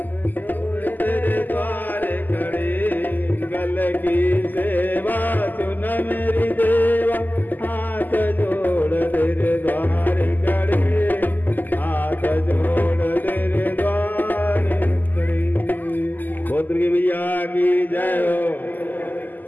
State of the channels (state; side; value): late; right; 0.086 ms